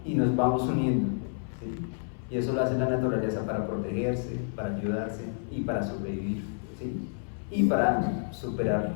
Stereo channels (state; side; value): silent; right; 58 dB below the other